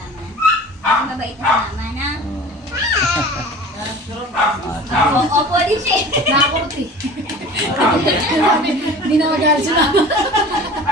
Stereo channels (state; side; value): normal; both; correlation 0.41